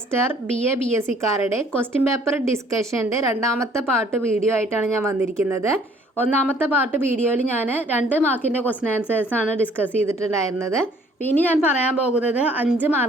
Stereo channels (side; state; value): both; normal; correlation 0.59